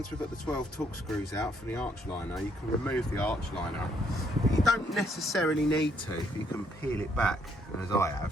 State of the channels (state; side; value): normal; both; correlation 0.70